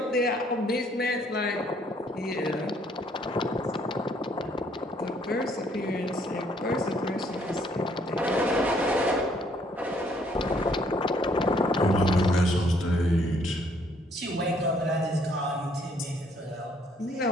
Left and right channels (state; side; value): normal; both; correlation 0.65